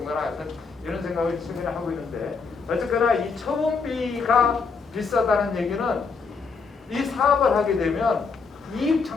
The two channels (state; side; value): quieter; right; 5.0 dB